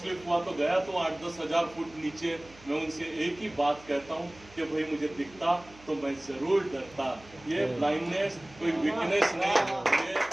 हुआ तो गया तो 8-10 हज़ार फुट नीचे। मैं उनसे एक ही बात कहता हूँ कि भाई मुझे दिखता तो मैं ज़रूर डरता। ये ब्लाइंडनेस कोई वीकनेस नहीं,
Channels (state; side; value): noise; right; hum, 23 dB below the sound